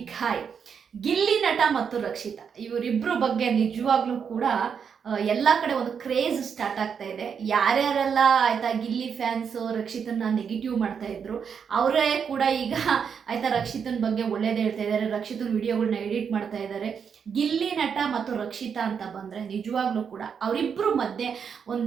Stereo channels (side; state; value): left; quieter; 6.9 dB